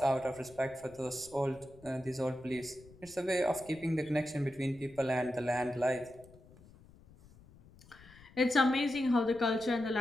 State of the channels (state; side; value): noise; left; rumble, 23 dB below the sound